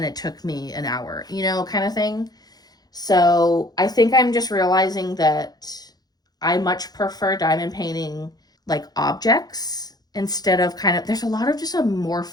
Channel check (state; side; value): late; right; 0.19 ms